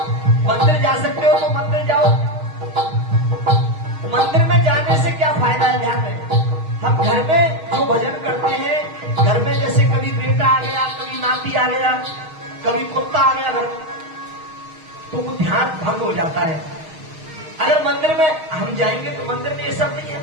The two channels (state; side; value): late; left; 6.4 ms